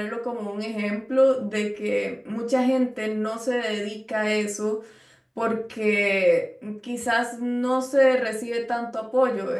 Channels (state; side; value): identical; both; correlation 1.00